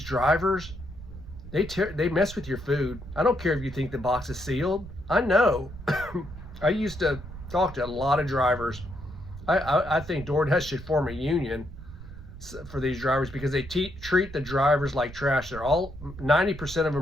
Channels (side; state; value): right; noise; rumble, 13 dB below the sound